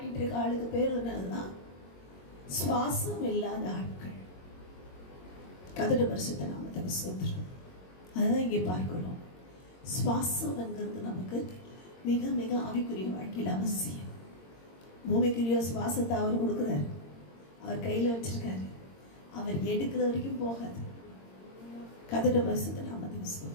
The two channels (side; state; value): right; late; 22 ms